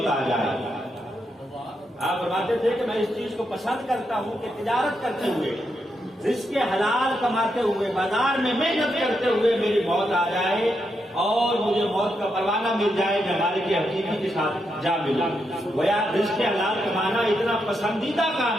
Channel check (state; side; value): normal; both; correlation 0.82